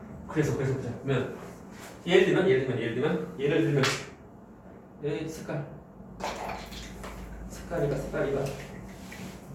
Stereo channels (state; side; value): identical; both; correlation 1.00